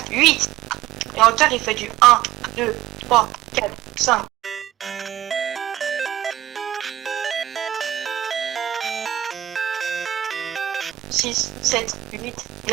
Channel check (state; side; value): quieter; left; 13.0 dB